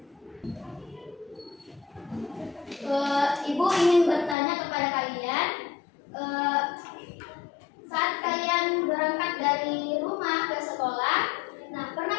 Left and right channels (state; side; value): drops out; right; at 4.4 s